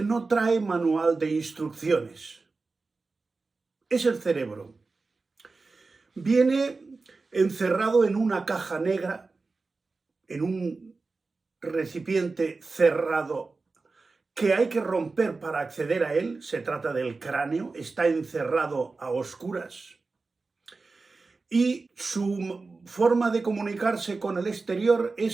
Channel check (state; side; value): quieter; left; 3.9 dB